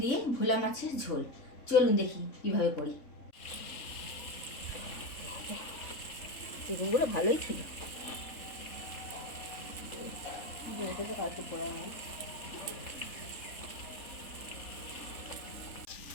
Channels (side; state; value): right; late; 3.7 ms